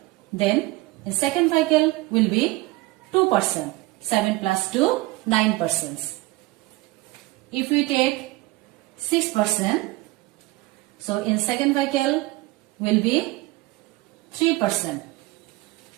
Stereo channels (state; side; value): quieter; left; 20.8 dB